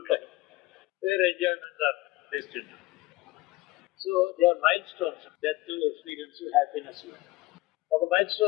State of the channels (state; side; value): quieter; right; 19.8 dB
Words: life, where enjoyments are destined. So they are milestones, death, experience, happiness. ఒక మైల్